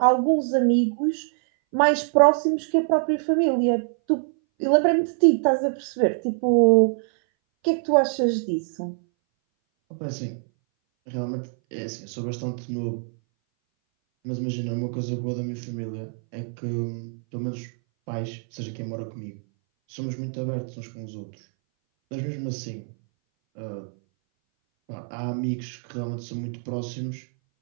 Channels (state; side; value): silent; left; 60 dB below the other